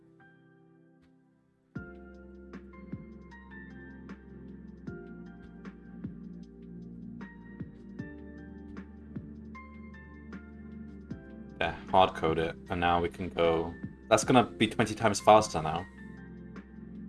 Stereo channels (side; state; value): both; identical; correlation 1.00